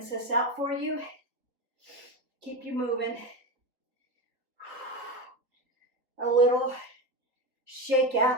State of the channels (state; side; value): late; left; 3.8 ms